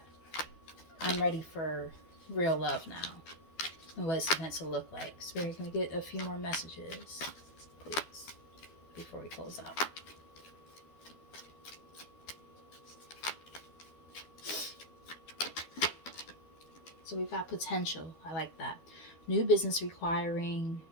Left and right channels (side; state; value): right; late; 12 ms